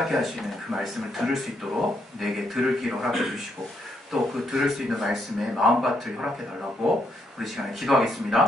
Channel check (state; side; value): normal; both; correlation 0.76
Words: 하시는 그 말씀을 들을 수 있도록 내게 들을 길을 허락해 주시고 또 그 들을 수 있는 말씀에 마음밭을 허락해 달라고 우리 시간에